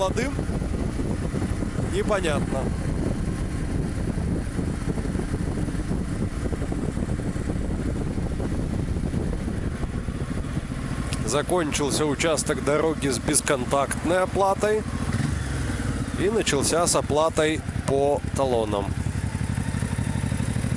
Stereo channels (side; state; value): both; identical; correlation 1.00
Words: Непонятно. Закончился участок дороги с бесконтактной оплатой и начался с оплатой по талонам.